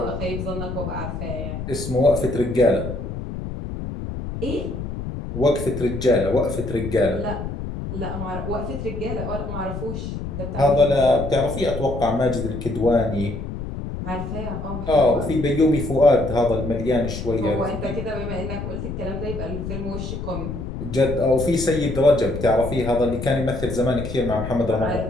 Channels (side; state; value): left; noise; rumble, 6 dB below the sound